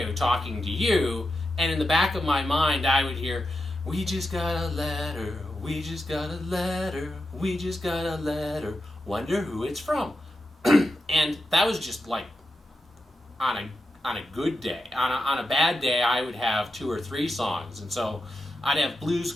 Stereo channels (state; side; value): normal; both; correlation 0.89